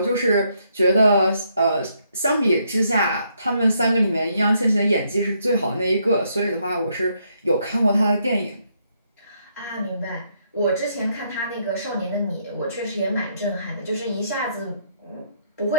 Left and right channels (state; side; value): inverted; both; correlation -0.73